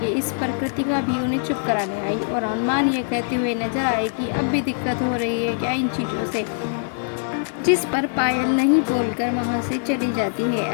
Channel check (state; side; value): silent; right; digital silence